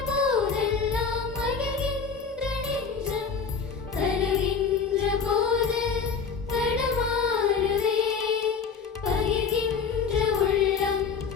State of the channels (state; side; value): quieter; right; 5.7 dB